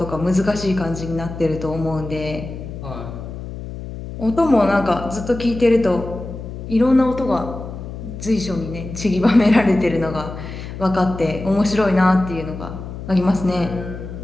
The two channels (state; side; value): noise; left; hum, 10 dB below the sound